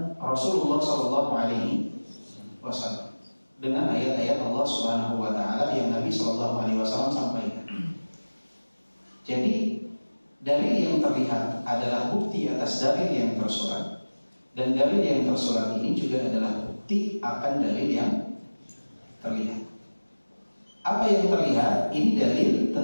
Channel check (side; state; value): both; inverted; correlation -1.00